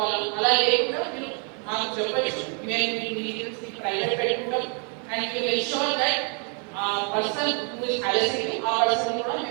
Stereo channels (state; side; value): quieter; left; 39.1 dB